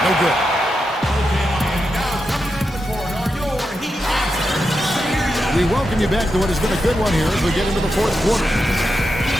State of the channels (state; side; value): normal; both; correlation 0.87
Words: no good. We welcome you back to what has been a good one here as we get into the fourth quarter.